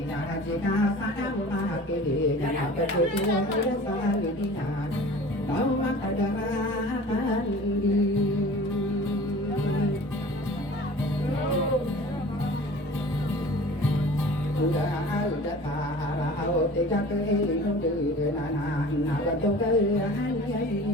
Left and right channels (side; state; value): both; normal; correlation 0.43